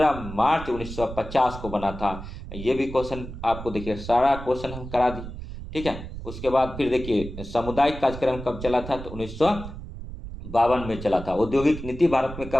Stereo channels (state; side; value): noise; right; rumble, 10 dB below the sound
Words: मार्च 1950 को बना था। ये भी क्वेश्चन आपको देखिए सारा क्वेश्चन हम करा दिए, ठीक है। उसके बाद फिर देखिए सामुदायिक कार्यक्रम कब चला था तो 1952 में चला था। औद्योगिक नीति भारत में